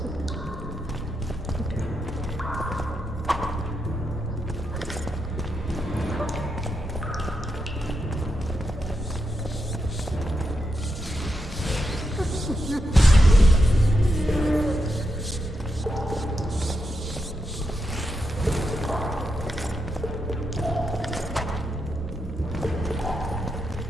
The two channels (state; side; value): normal; both; correlation 0.84